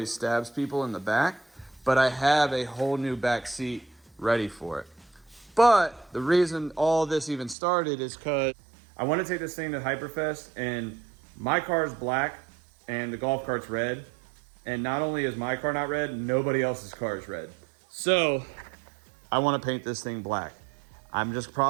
stabs people in the back, but I have a whole new back seat ready for it. But the reason all this even started is because I want to take this thing to Hyperfest, and my car is black and the golf cart's red. And not only is my car not red, nobody else's car is red. So I want to paint this thing black. I'm just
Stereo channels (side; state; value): left; drops out; at 7.6 s